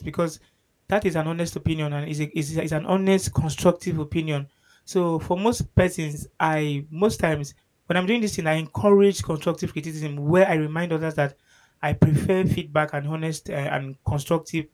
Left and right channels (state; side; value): identical; both; correlation 1.00